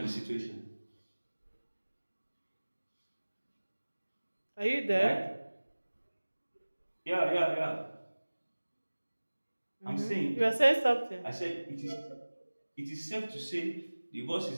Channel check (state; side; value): inverted; both; correlation -1.00